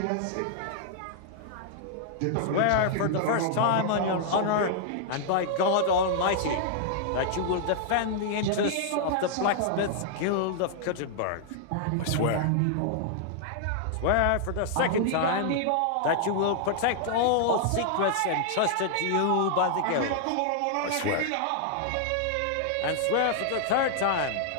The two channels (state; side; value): different; both; correlation -0.01